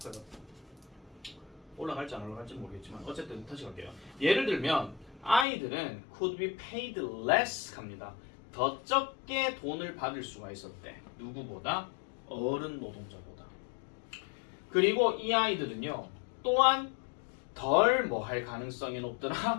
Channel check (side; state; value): right; drops out; at 5.5 s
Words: 올라갈지 안 올라갈지 모르겠지만 어쨌든 다시 갈게요. 예를 들면 아이들은 could be paid less 합니다. 더 적게 돈을 받을 수가 있었대. 누구보다? 어른 노동자보다. 그리고 이 아이들은요 또한 덜 뭐 할 가능성이